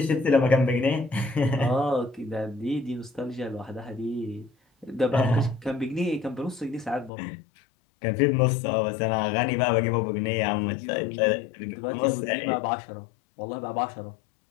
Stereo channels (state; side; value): drops out; right; at 7.1 s